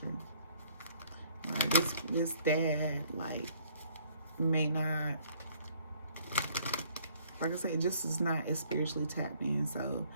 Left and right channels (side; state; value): both; inverted; correlation -0.63